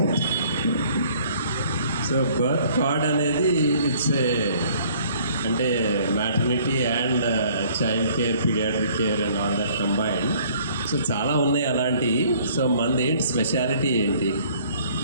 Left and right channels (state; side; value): inverted; both; correlation -0.58